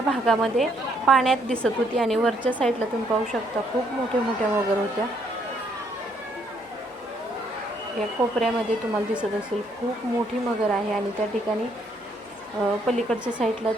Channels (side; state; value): both; normal; correlation 0.70